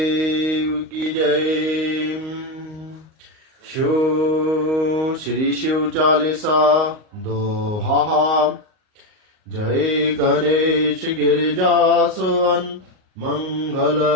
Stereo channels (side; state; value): left; late; 38 ms